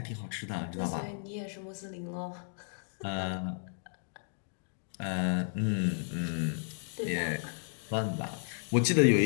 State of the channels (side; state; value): right; silent; digital silence